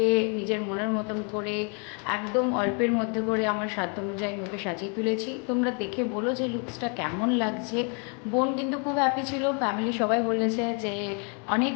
নিজের মনের মতন করে একদম অল্পের মধ্যে করে আমার সাধ্য অনুযায়ী ওকে সাজিয়ে তুলেছি। তোমরা দেখে বলো যে লুকসটা কেমন লাগছে। বোন কিন্তু খুব হ্যাপি ছিল, ফ্যামিলি সবাই বলেছে যে অনেক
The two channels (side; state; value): right; quieter; 37.3 dB